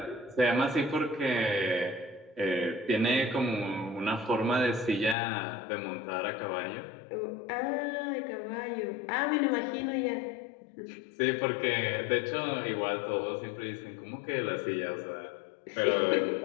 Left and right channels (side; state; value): right; drops out; at 5.2 s